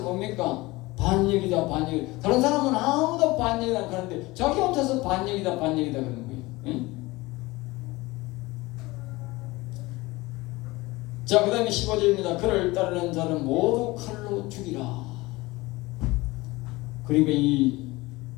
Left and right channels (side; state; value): right; quieter; 21.2 dB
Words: 뭡니까? 반역이다. 다른 사람은 아무도 반역이 안 하는데 자기 혼자서 반역이다 그러는 거예요. 예? 자, 그 다음에 15절입니다. 그를 따르는 자는 모두 칼로 죽이라. 그러니까 이